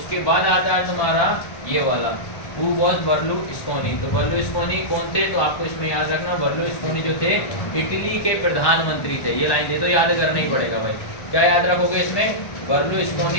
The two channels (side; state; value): right; late; 1.1 ms